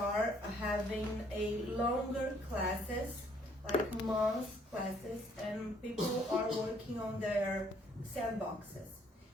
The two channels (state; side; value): normal; both; correlation 0.64